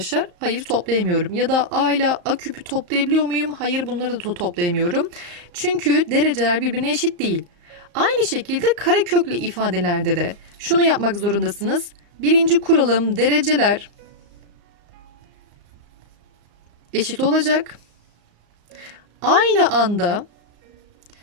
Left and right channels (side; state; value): left; late; 35 ms